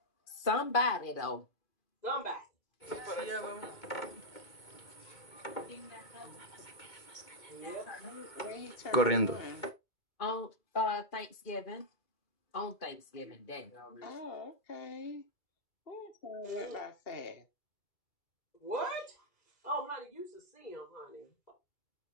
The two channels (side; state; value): right; late; 2.2 ms